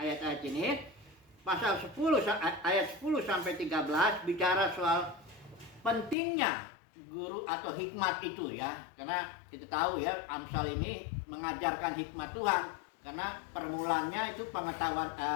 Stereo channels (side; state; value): right; drops out; at 6.2 s